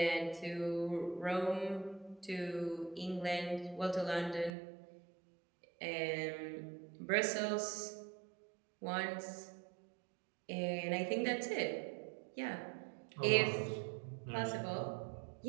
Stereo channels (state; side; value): drops out; left; at 4.5 s